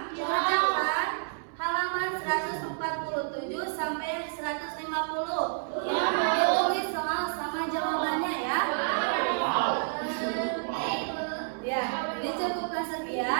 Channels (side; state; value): left; silent; 58 dB below the other